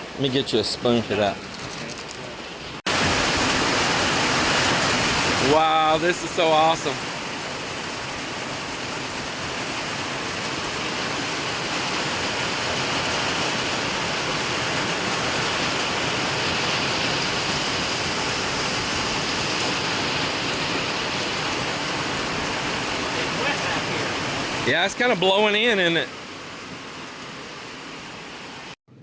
Let me get you a spoon for that. Wow, this is so awesome. Yeah, it's kind of blowing in, isn't it?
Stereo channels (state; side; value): identical; both; correlation 1.00